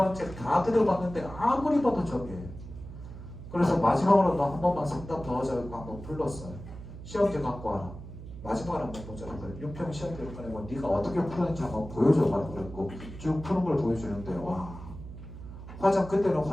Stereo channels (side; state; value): right; noise; hum, 13 dB below the sound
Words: 책 다 들어봤는데 아무리 봐도 저게예요. 그래서 마지막으로 너 한 번만 상담 더 하자고 한번 불렀어요. 시험지 갖고 와라. 마지막으로 한번 보자. 6평 시험지를 꺼내고 네가 어떻게 푸는지 한번 보여줘가지고 그랬고 쭉 푸는 걸 보여주는데 와. 그때는